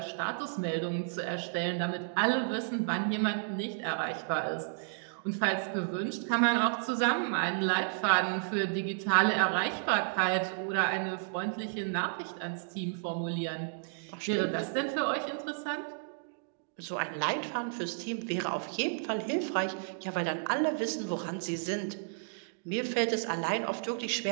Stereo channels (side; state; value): left; silent; digital silence